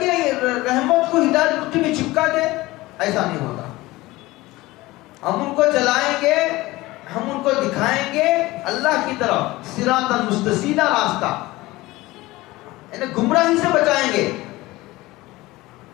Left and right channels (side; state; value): right; quieter; 19.4 dB